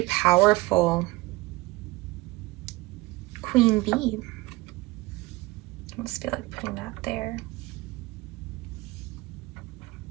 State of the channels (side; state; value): left; quieter; 20.8 dB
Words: powerful. Queen Bee. I just feel like putting that there